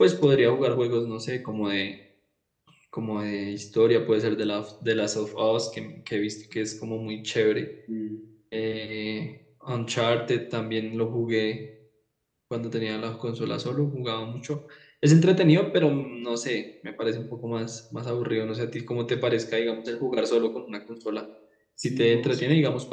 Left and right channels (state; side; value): identical; both; correlation 1.00